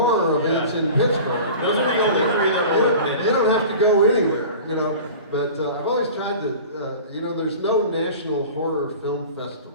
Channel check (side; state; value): both; inverted; correlation -0.39